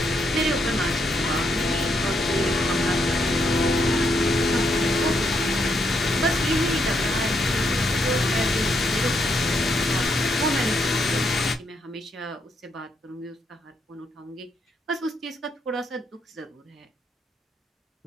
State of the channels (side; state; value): both; normal; correlation 0.77